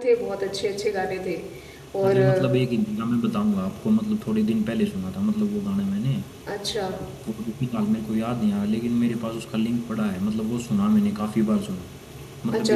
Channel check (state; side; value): identical; both; correlation 1.00